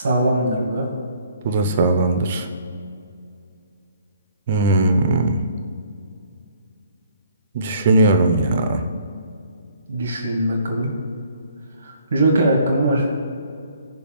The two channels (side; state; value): both; inverted; correlation -0.59